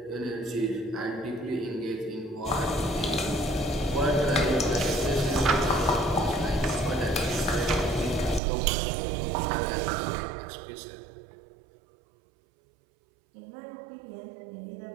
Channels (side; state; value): left; drops out; at 8.4 s